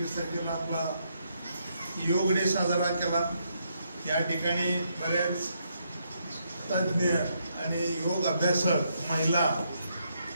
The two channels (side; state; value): both; inverted; correlation -0.77